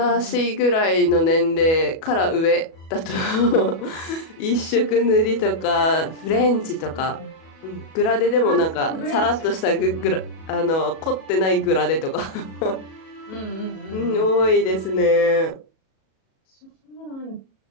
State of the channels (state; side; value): late; right; 37 ms